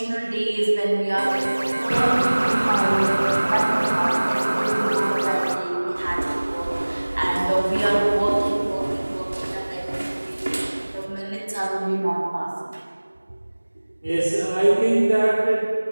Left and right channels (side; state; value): both; inverted; correlation -1.00